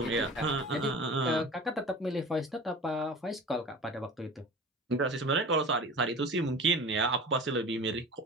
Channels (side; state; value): both; normal; correlation 0.37